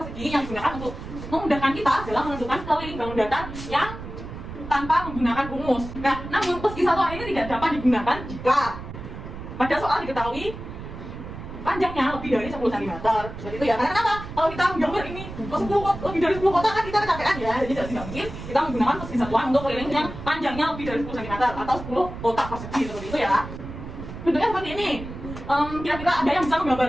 yang digunakan untuk memudahkan kita dalam menentukan keliling bangun datar yang tanpa menggunakan rumus. Nah, namun persegi satuan ini tidak dapat digunakan jika pada soal diketahui panjangnya lebih dari 10 cm. Seperti itu ya. Karena kenapa? Kalau kita menggambar ini lebih dari 10 kotak kan kita kecapean ya. Jadi tidak mungkin kita menggunakan persegi satuan untuk keliling yang panjangnya lebih dari 10 cm atau 10 kotak persegi seperti itu ya. Bentuknya seperti ini. Kira-kira ada yang bisa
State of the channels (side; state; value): right; noise; rumble, 11 dB below the sound